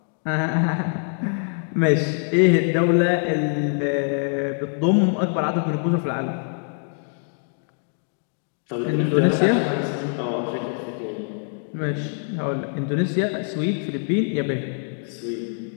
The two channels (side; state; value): right; silent; 63 dB below the other